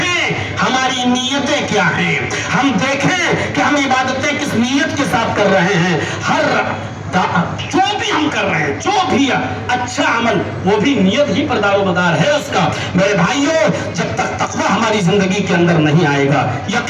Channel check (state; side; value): identical; both; correlation 1.00